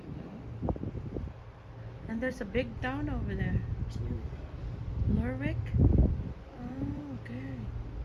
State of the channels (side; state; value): both; identical; correlation 1.00